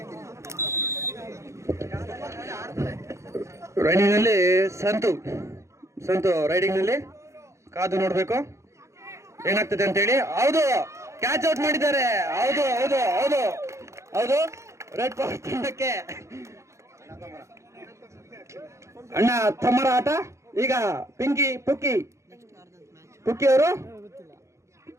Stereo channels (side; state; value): left; late; 0.14 ms